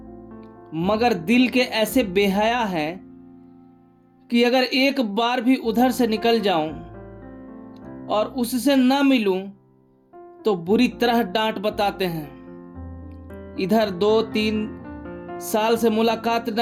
मगर दिल के ऐसे बेहया है कि अगर एक बार भी उधर से निकल जाऊं और उससे ना मिलूं तो बुरी तरह डांट बताते हैं। इधर 2-3 साल से मुलाकात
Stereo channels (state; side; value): identical; both; correlation 1.00